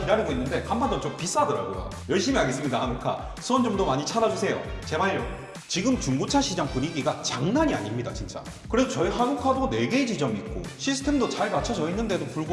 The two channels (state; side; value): identical; both; correlation 1.00